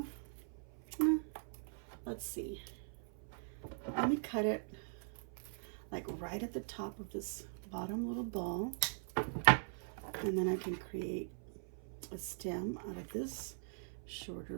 Let's see. Let me cut it like right at the top of this bottom little ball, and then I can create a stem out of this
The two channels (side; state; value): left; silent; 50 dB below the other